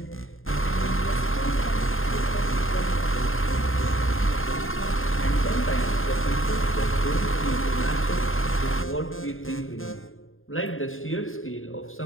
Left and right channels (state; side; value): late; right; 0.60 ms